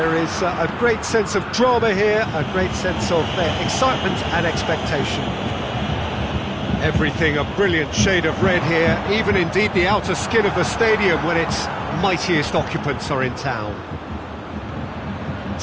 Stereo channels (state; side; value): identical; both; correlation 1.00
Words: is a great sense of drama here, a great sense of excitement and expectation. Everything a brilliant shade of red here, even indeed the outer skin of the stadium when its mightiest occupants are in town.